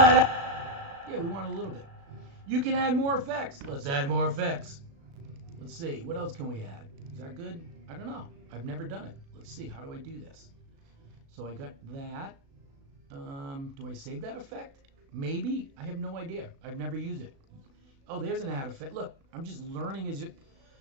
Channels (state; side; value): late; left; 36 ms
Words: da. Yeah, we want a little bit. You can add more effects. Let's add more effects. Let's see. What else can we add? Is that good? I don't know. I've never done it. Let's see. How do I do this? So I got that. Do I save that effect? Maybe. I have no idea. I've never used it. Oh, there's an add effect. Look, I'm just learning as you.